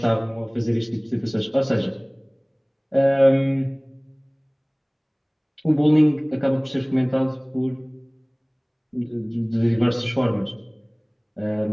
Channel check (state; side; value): identical; both; correlation 1.00